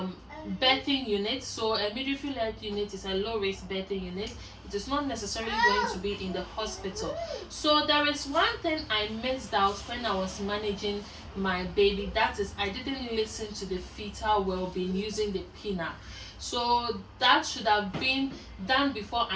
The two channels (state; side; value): identical; both; correlation 1.00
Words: birthing unit. So a midwifery led unit is a low risk birthing unit. It is not necessarily going to be in the hospital. So there is one thing I missed out when I was managing my baby. That is, I didn't listen to the fetal well-being using the pinna. So that should have been done before